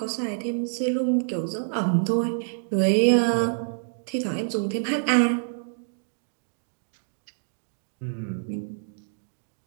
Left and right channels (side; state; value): left; silent; digital silence